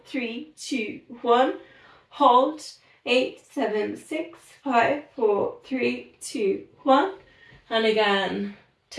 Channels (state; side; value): identical; both; correlation 1.00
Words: 3, 2, 1. Hold. 8, 7, 6, 5, 4, 3, 2, 1. And again,